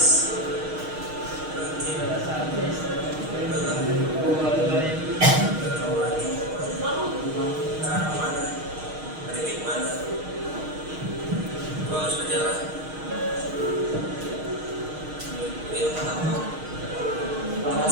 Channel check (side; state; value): left; late; 6.4 ms